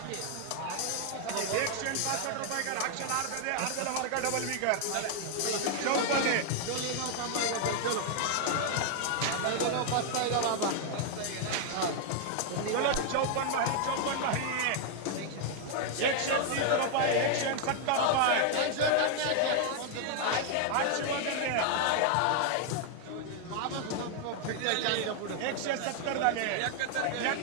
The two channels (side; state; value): both; different; correlation 0.00